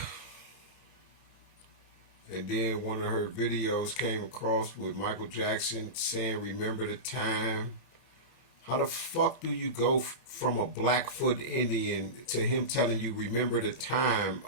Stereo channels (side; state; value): right; late; 31 ms